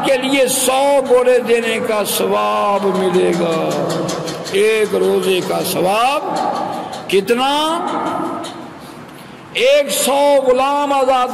کے لیے 100 گھوڑے دینے کا ثواب ملے گا۔ ایک روزے کا ثواب کتنا؟ 100 غلام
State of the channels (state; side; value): identical; both; correlation 1.00